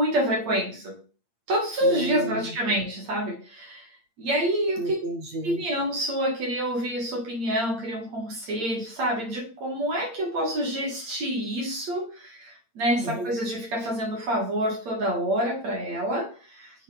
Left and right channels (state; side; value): late; left; 8.7 ms